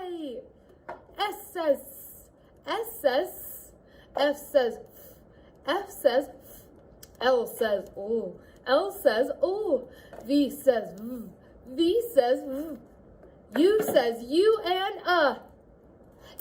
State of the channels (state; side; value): identical; both; correlation 1.00